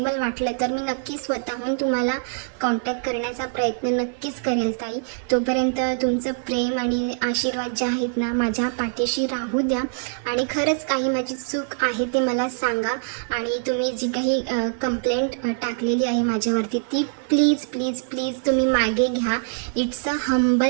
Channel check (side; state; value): left; silent; 63 dB below the other